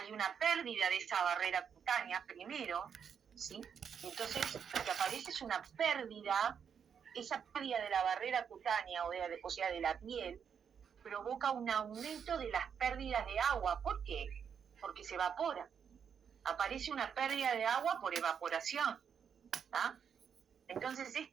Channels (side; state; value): left; quieter; 7.4 dB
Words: una pérdida de esa barrera cutánea primero, ¿sí? Entonces, lo que aparece es una pérdida, esa pérdida de la barrera cutánea, o sea, de la piel, provoca un aumento de las pérdidas de agua. ¿Por qué? Porque se evapora. Aparece una pérdida de agua por evaporación, ¿tá? Entonces,